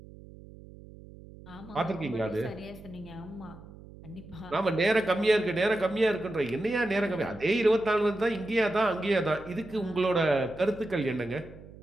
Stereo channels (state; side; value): noise; right; hum, 18 dB below the sound